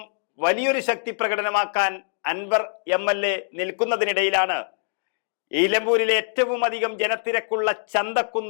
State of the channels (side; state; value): right; silent; digital silence